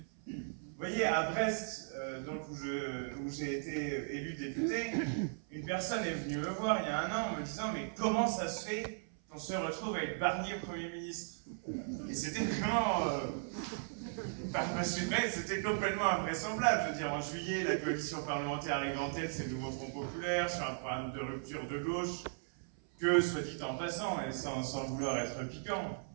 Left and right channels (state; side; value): silent; left; 53 dB below the other